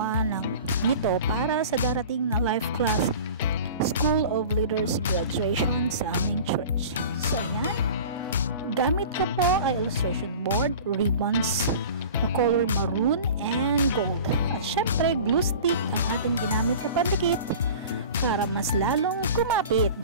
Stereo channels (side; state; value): both; inverted; correlation -0.39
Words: nito para sa darating na life class School of Leaders graduation sa aming church. So ayan, gamit ko po ay illustration board, ribbons na color maroon and gold. At syempre glue stick ang ating ginamit na pandikit para mas lalong kumapit.